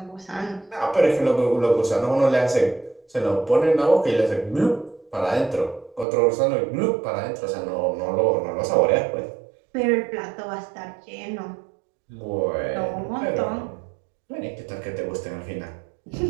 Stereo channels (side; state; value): left; drops out; at 6.1 s